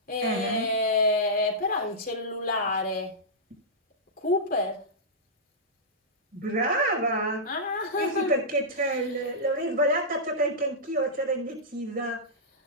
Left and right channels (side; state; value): both; normal; correlation -0.13